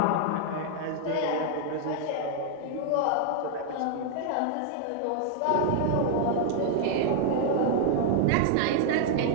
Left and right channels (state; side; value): different; both; correlation 0.00